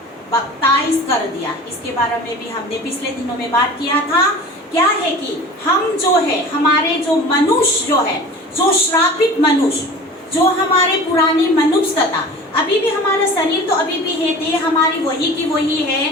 बपतिस्म कर दिया। इसके बारे में भी हमने पिछले दिनों में बात किया था। क्या है कि हम जो है, हमारे जो मनुष्य जो है, जो श्रापित मनुष्य, जो हमारे पुरानी मनुष्यता, अभी भी हमारा शरीर तो अभी भी है, देह हमारी वही की वही है।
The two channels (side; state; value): both; normal; correlation 0.39